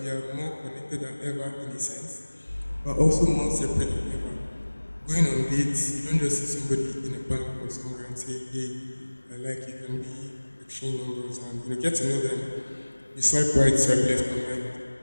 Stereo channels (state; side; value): inverted; both; correlation -1.00